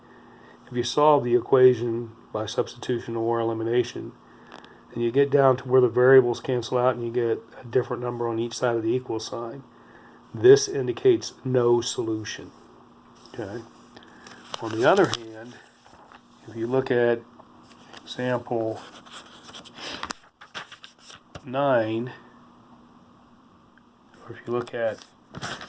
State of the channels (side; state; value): both; identical; correlation 1.00